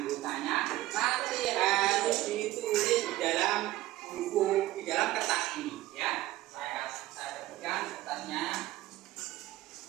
Nanti harus ditulis di dalam buku, di dalam kertas ini ya. Saya berikan kertasnya.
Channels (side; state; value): left; quieter; 16.4 dB